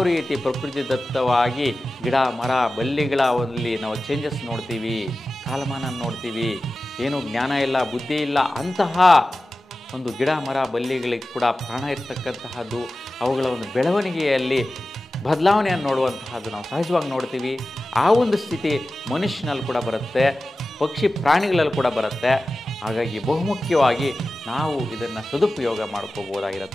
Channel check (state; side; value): normal; both; correlation 0.95